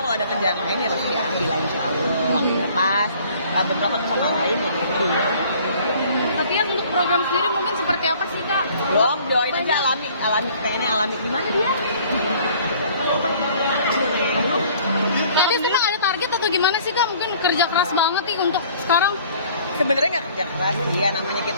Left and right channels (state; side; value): inverted; both; correlation -0.54